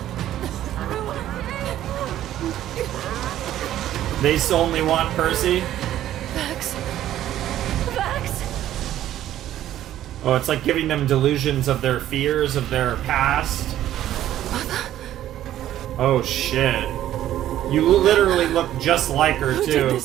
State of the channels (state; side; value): quieter; left; 12.5 dB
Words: They only want Percy? Vax. Vax. Oh, it's like giving them delusions of their fears, of their past. Oh, shit. You literally look just like her, Who too. did